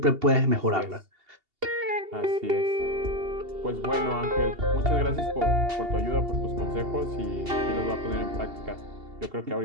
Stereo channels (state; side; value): late; left; 2.8 ms